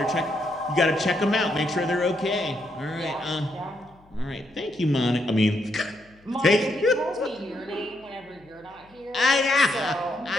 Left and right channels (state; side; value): noise; left; hum, 29 dB below the sound